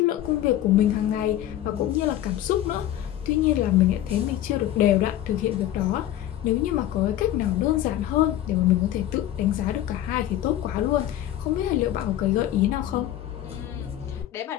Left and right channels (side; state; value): right; quieter; 12.7 dB